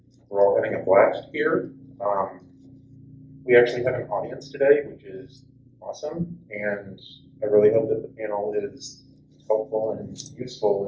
we're all having a blast here. We actually have an audience today, which is awesome, and I really hope that the panel is helpful and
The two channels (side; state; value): both; identical; correlation 1.00